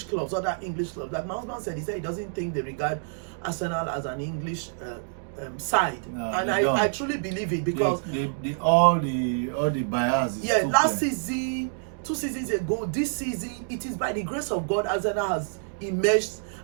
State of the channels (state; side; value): silent; left; digital silence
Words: clubs. Like my husband said, he said he doesn't think they regard Arsenal as an English side, no, and I truly believe it because all the bias. Yeah, last season, 2 seasons ago, this season, it is by the grace of God Arsenal has emerged